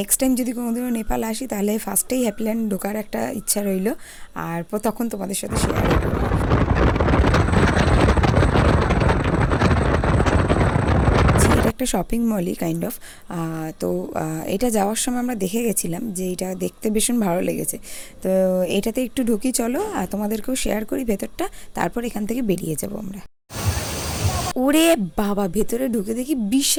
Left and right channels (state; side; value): identical; both; correlation 1.00